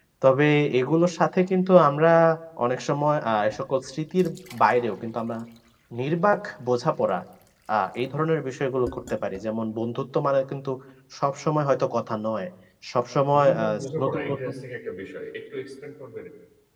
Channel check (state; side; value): identical; both; correlation 1.00